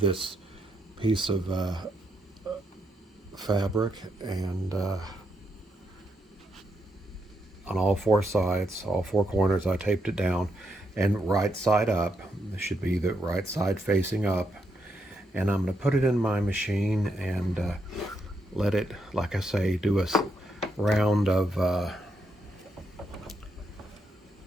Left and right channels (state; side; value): normal; both; correlation 0.80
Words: piece of fabric, and on all four sides, all four corners, I taped it down, and right side up. This should be the right side facing up. And I'm going to put it in my machine and let it, like I say, do a round of, a